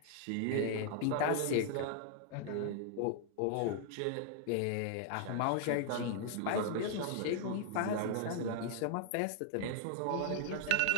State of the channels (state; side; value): different; both; correlation 0.00